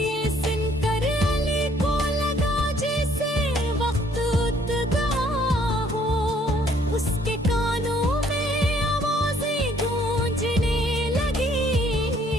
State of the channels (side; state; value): both; normal; correlation 0.63